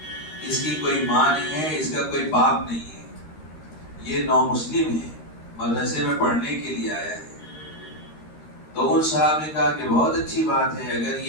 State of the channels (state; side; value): late; right; 13 ms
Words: اس کی کوئی ماں نہیں ہے، اس کا کوئی باپ نہیں ہے، یہ نامسلم ہے، مدرسے میں پڑھنے کے لیے آیا ہے۔ تو ان صاحب نے کہا کہ بہت اچھی بات ہے، اگر